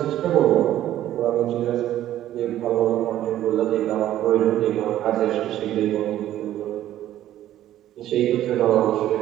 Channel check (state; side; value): quieter; left; 12.7 dB